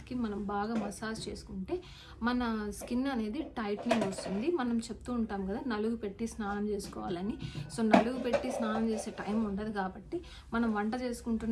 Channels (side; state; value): both; identical; correlation 1.00